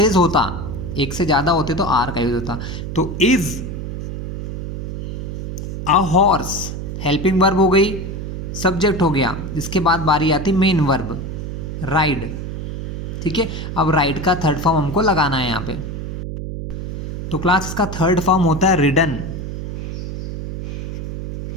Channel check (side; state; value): right; noise; hum, 6 dB below the sound